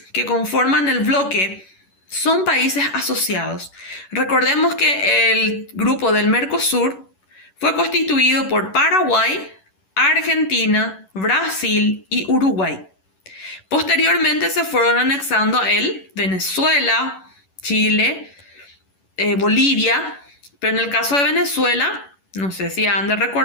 que conforman el bloque son países asociados. Recordemos que el grupo del Mercosur fue constituido por Paraguay, Argentina, Brasil y Uruguay. Posteriormente se fueron anexando a él Venezuela, Chile, Bolivia, pero en el caso de Venezuela, no sé si han de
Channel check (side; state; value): right; late; 11 ms